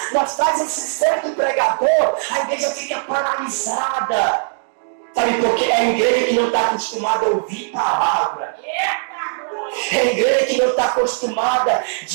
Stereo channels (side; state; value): left; silent; digital silence